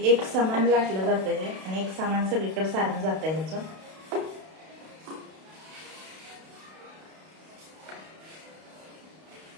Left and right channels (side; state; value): left; late; 32 ms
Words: एक समान लाटलं जातं हे आणि एक समान सगळीकडे सारण जातं ह्याचं.